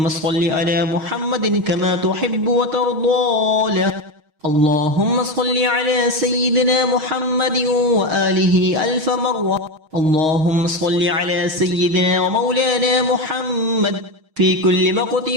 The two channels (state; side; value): late; left; 6.3 ms